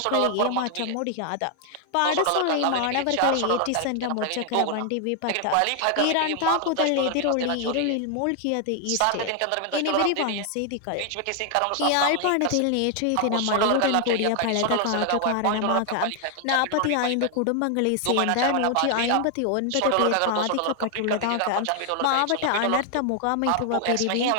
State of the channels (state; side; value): different; both; correlation 0.00